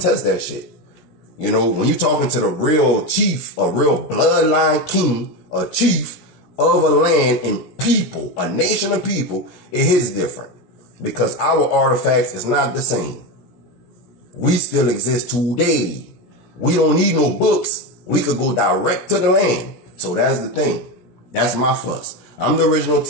that shit. You know, when you're talking to the real chief, a real bloodline king, a chief of a land and people, a nation of people, it is different because our artifacts is not the same. We still exist today. We don't need no books. We could go direct to the land. So that's the thing. That's my fuss. I'm the original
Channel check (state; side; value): late; right; 17 ms